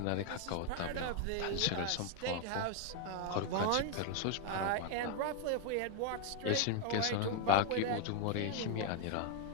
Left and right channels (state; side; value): different; both; correlation 0.00